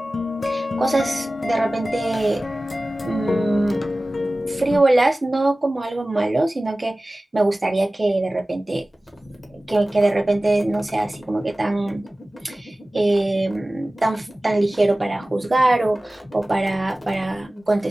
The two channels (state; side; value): normal; both; correlation 0.97